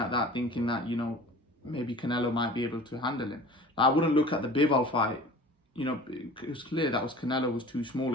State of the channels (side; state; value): both; normal; correlation 0.42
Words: that thinking that, you know, maybe Canelo might be able to handle him. I wouldn't look at the Bivol fight. You know, it was clear that Canelo was too small